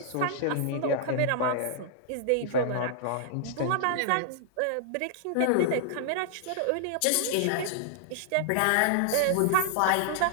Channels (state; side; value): different; both; correlation -0.01